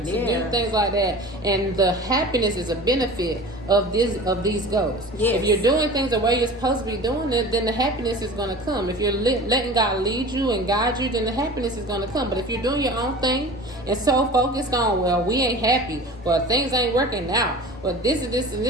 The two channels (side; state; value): both; normal; correlation 0.38